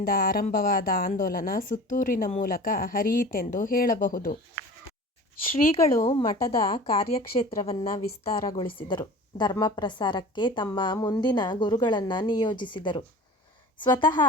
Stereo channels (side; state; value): both; normal; correlation 0.39